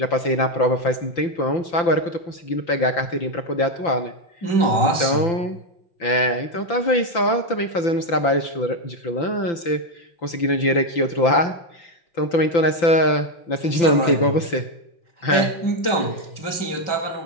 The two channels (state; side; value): late; right; 5.9 ms